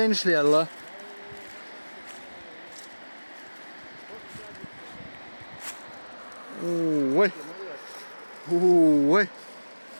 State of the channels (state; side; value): inverted; both; correlation -1.00